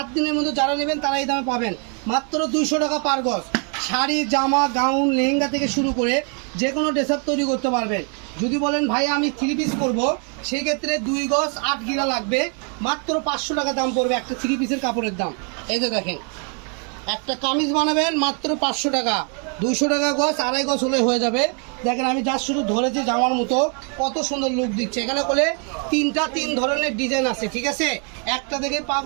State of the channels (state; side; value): quieter; left; 38.2 dB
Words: দিনের মধ্যে যারা নেবেন তারা এই দামে পাবেন, মাত্র 200 টাকা পার গজ। শাড়ি, জামা, গাউন, লেহেঙ্গা থেকে শুরু করে যে কোনো ড্রেস আপ তৈরি করতে পারবেন। যদি বলেন ভাই আমি 3 পিস করবো, সেই ক্ষেত্রে 2 গজ 8 গিরা লাগবে, মাত্র 500 টাকা দাম পড়বে একটা 3 পিসের কাপড়ের দাম। এই যে দেখেন, একটা কামিজ বানাবেন মাত্র 500 টাকা, 200 টাকা গজ, 2.5 গজ হলে হয়ে যাবে। দেখেন আমি যা শুধু ধরেছি জামার মতো, কত সুন্দর লুক দিচ্ছে। এখানে করে 3 ধরনের ডিজাইন আছে, ঠিক আছে? একটা দেখে